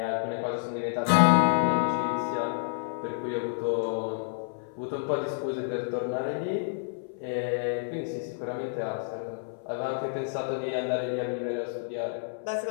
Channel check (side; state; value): right; silent; 58 dB below the other